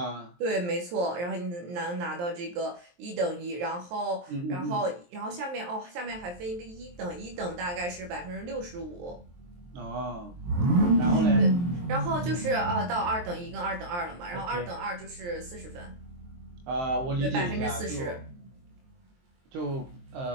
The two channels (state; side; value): late; left; 23 ms